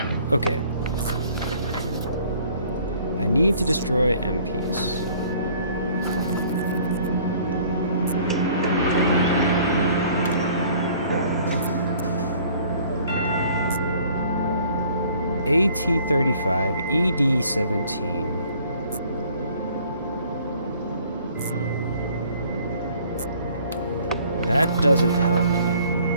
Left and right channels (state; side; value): inverted; both; correlation -0.56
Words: Okay. I need to destroy MPs. AT-35, ED-17. That doesn't help me any.